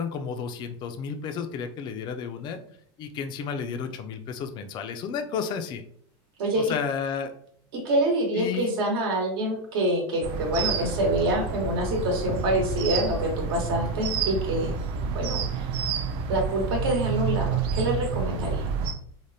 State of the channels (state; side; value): normal; both; correlation 0.06